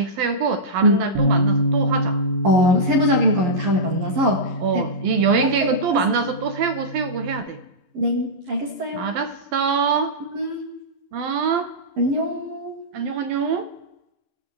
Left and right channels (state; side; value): late; left; 11 ms